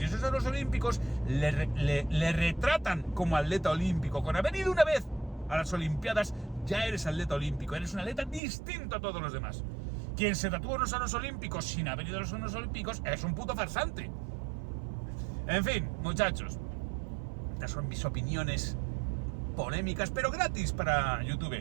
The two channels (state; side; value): drops out; left; at 8.4 s